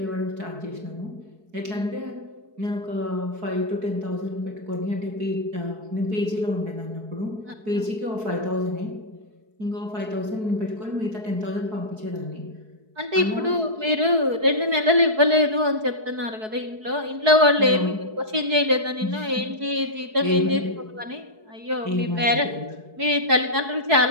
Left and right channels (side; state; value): left; late; 4.7 ms